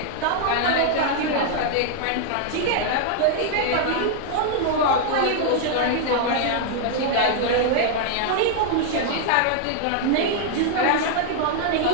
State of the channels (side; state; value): both; different; correlation 0.00